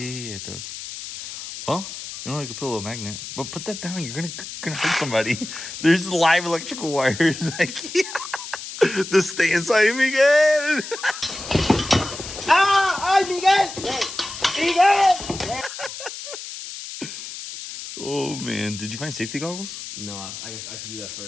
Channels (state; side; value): noise; left; hiss, 10 dB below the sound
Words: it does. Well, you know, you could put a little magnet. But put that down. You're gonna hurt somebody. There's live electrical wires. Like, the stay inside Miguel. ¡Ay, Miguel! ¡Miguel! Oh, man. Did you find safety goggles? No, I should do that